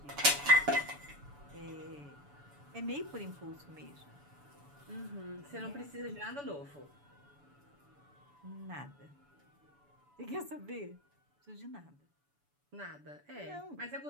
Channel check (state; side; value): late; left; 7.0 ms